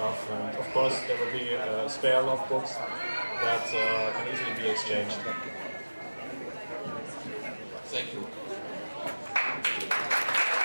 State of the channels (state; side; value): inverted; both; correlation -1.00